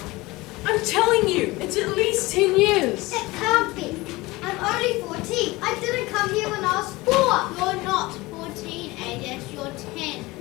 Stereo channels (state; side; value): quieter; right; 21.3 dB